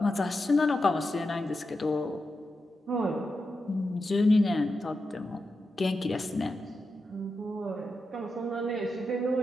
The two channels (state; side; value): normal; both; correlation 0.89